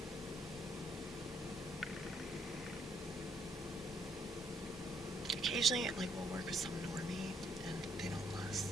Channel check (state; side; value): noise; left; rumble, 20 dB below the sound